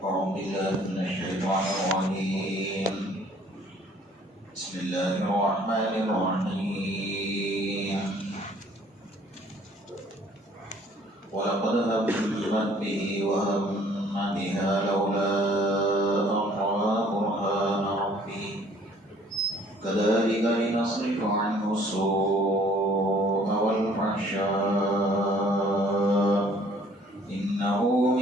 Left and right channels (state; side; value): normal; both; correlation 0.57